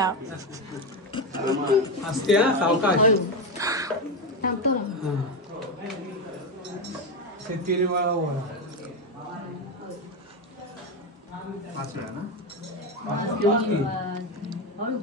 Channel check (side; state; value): both; normal; correlation 0.12